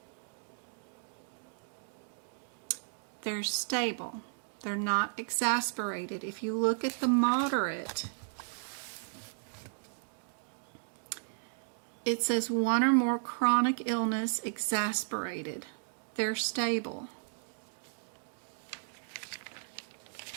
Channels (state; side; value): silent; left; digital silence